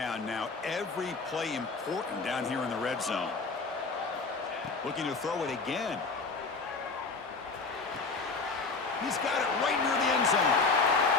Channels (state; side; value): quieter; right; 4.2 dB